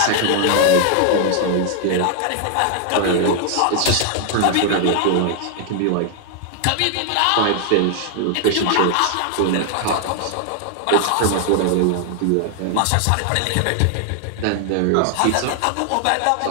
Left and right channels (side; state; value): both; different; correlation 0.00